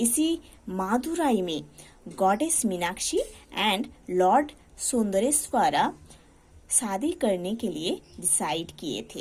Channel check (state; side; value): identical; both; correlation 1.00